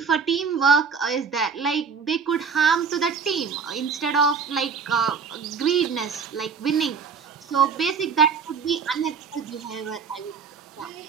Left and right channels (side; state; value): left; quieter; 5.8 dB